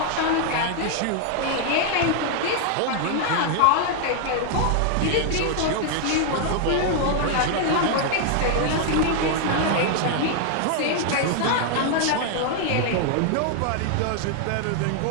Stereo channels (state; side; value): different; both; correlation 0.00